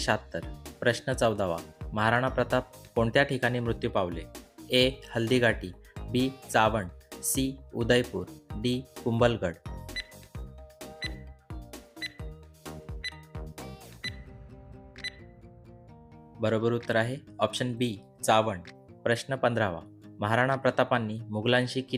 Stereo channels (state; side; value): identical; both; correlation 1.00